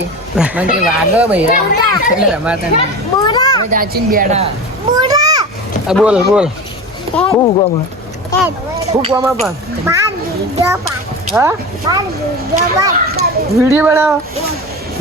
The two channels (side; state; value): both; normal; correlation 0.29